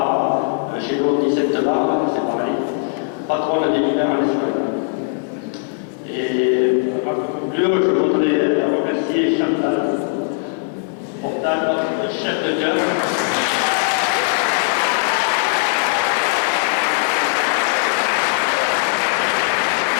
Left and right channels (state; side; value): silent; right; digital silence